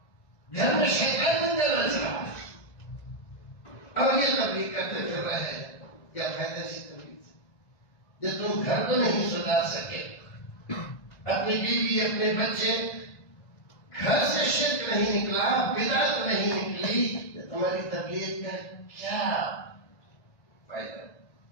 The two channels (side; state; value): right; late; 1.5 ms